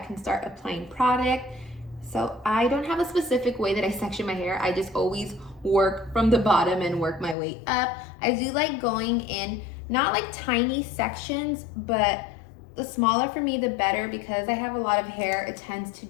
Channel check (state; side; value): drops out; right; at 7.4 s